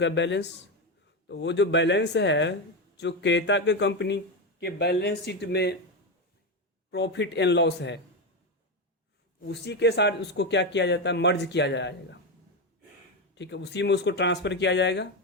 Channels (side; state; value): both; normal; correlation 0.12